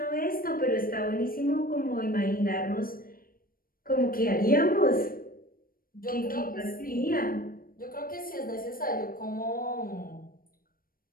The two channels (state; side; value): late; right; 0.42 ms